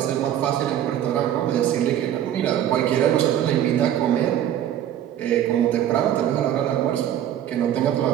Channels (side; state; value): left; quieter; 10.9 dB